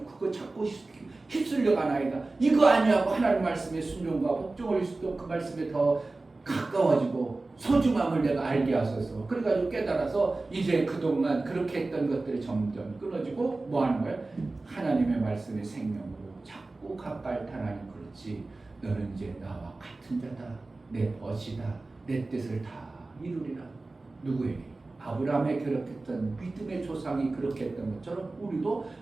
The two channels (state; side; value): quieter; left; 3.3 dB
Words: 그거 자꾸 휩쓸려 가나이다, 이거 아니하고 하나님 말씀에 순종과 복종을 수도 그 말씀에 더 가까워지고 소중함을 내가 알게 하소서. 그래가지고 깨달아서 이제 그동안 그렇게 했던 것들이 점점 끊어지고 뭐 하는 거야? 하나님의 말씀의 생명으로 자꾸 가까이 타라니. 그렇지, 너는 이제 나와 같은 자다, 내 벗이다, 내 뜻을 다 이루리라. 누구에게? 아브라함에 그렇게 했던 믿음의 조상이 그렇게 했던 것처럼 우리도